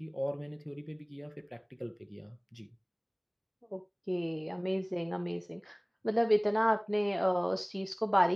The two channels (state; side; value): identical; both; correlation 1.00